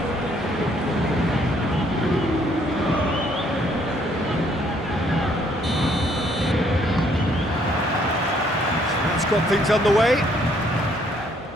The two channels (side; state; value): both; normal; correlation 0.66